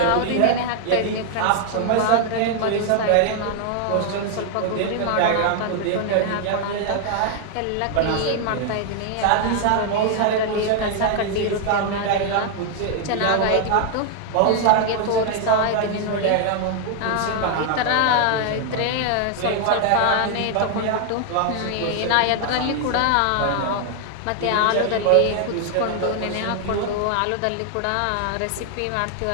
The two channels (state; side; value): different; both; correlation 0.00